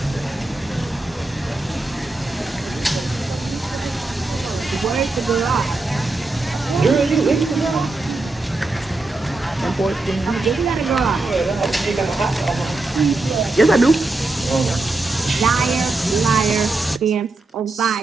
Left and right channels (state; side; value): quieter; left; 3.1 dB